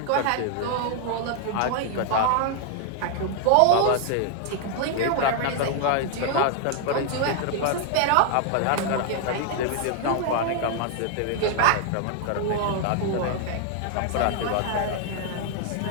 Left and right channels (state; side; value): different; both; correlation 0.00